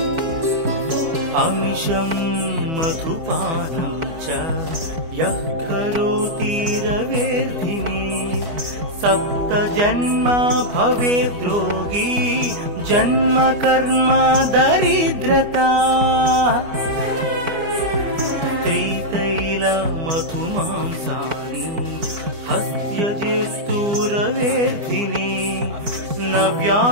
अमिषं मधुपानं च यः करोति रवेर्धिनी सप्तजन्म भवेत् रोगी जन्म कर्म दरिद्रता त्रितैलमधुमांसानि हस्त्यजिस्तूरवेदिनी न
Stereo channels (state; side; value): late; left; 4.5 ms